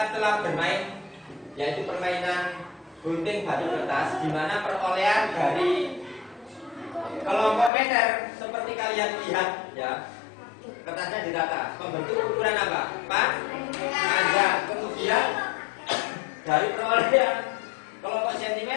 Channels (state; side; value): drops out; right; at 7.7 s